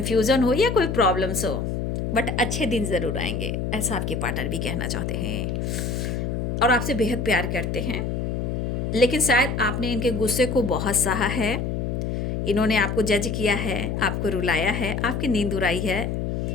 हो या कोई प्रॉब्लम्स हो, बट अच्छे दिन ज़रूर आएंगे, ऐसा आपके पार्टनर भी कहना चाहते हैं और आपसे बेहद प्यार करते हैं। लेकिन शायद आपने इनके गुस्से को बहुत सहा है, इन्होंने आपको जज किया है, आपको रुलाया है, आपकी नींद उड़ाई है।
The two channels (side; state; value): left; noise; hum, 1 dB below the sound